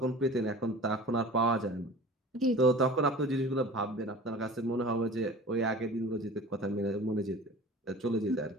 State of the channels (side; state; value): both; normal; correlation 0.40